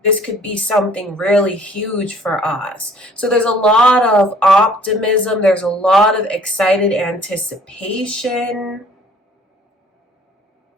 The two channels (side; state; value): both; normal; correlation 0.55